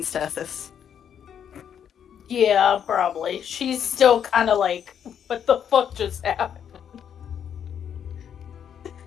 Tethys? Yeah, probably. She's still kind of like, what the fuck just happened?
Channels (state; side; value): quieter; right; 8.6 dB